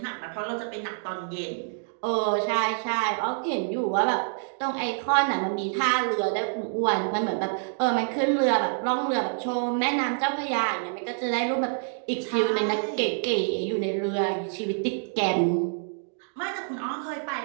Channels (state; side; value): silent; left; digital silence